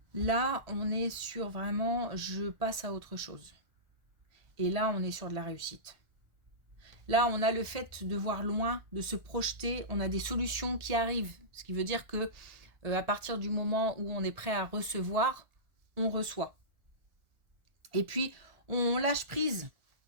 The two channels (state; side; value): late; left; 1.4 ms